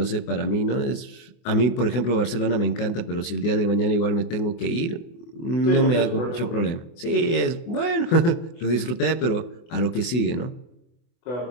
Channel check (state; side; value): late; right; 24 ms